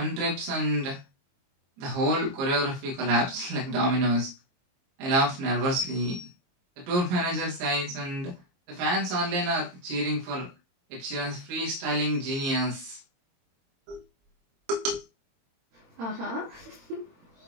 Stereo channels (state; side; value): late; left; 22 ms